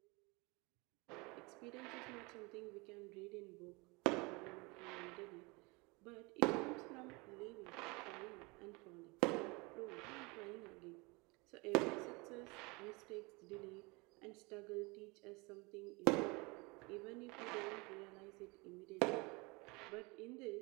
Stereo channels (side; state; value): left; quieter; 26.7 dB